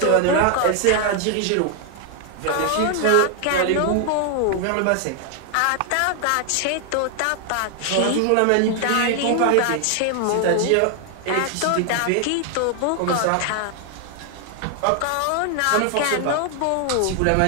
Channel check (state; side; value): different; both; correlation 0.00